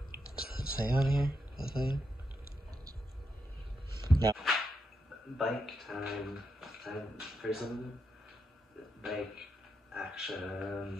this. Does it say on here? The thing? No. Bike time for some bike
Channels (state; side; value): normal; both; correlation 0.83